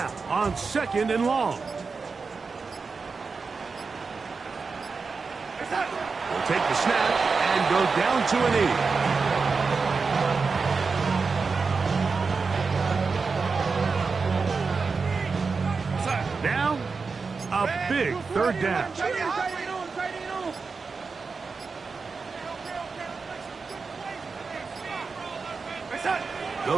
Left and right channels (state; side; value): quieter; left; 4.7 dB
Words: on second and long. We'll take the snap and go down to a knee. Now, a big third down.